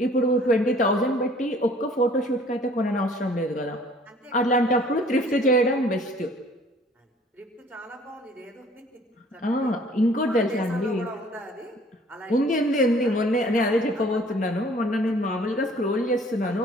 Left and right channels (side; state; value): both; normal; correlation 0.54